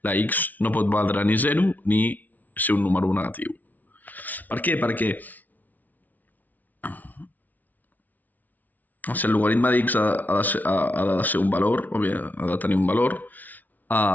La x no pot valdre ni 0 ni ser un número negatiu. Per què? Perquè si el logaritme d'x ha de ser un valor, o bé ha de tenir un valor,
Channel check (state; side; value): late; right; 0.078 ms